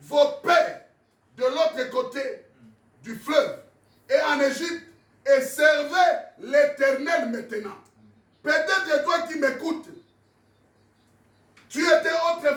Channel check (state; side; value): identical; both; correlation 1.00